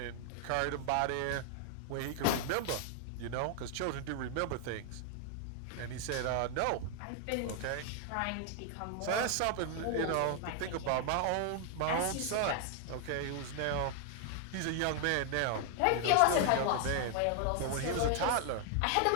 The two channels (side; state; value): both; different; correlation 0.00